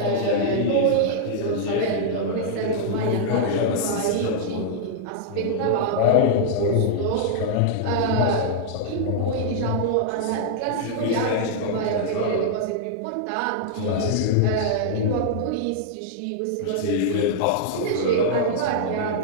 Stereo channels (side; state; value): both; different; correlation -0.02